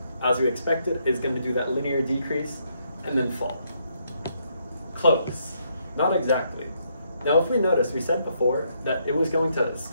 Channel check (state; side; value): inverted; both; correlation -0.74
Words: as we expected, is going to do that linear decrease and then fall. Close. Not exactly. Now, if we notice, we said before that it was going to